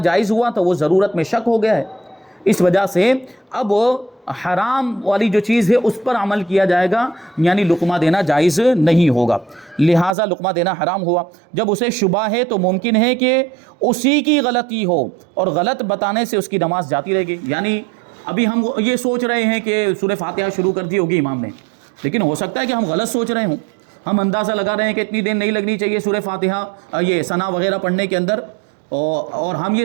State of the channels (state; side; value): drops out; left; at 10.2 s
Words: ہوا تو وہ ضرورت میں شک ہو گیا ہے، اس وجہ سے اب حرام والی جو چیز ہے اس پر عمل کیا جائے گا، یعنی لقمہ دینا جائز نہیں ہوگا، لہٰذا لقمہ دینا حرام ہوا۔ جب اسے شبہ ہے تو ممکن ہے کہ اسی کی غلطی ہو، اور غلط بتانے سے اس کی نماز جاتی رہے گی۔ یعنی ابھی ہم یہ سوچ رہے ہیں کہ سورہ فاتحہ شروع کر دی ہوگی امام نے، لیکن ہو سکتا ہے کہ ہم غلط سوچ رہے ہوں، ہم اندازہ لگا رہے ہیں کہ اتنی دیر نہیں لگنی چاہیے سورہ فاتحہ یہ ثنا وغیرہ پڑھنے کے اندر، اور ہم یہ